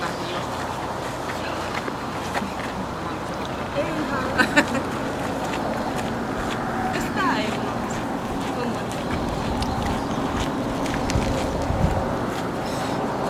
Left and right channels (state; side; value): identical; both; correlation 1.00